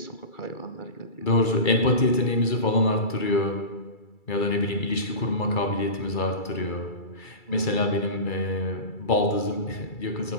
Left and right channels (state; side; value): late; right; 2.3 ms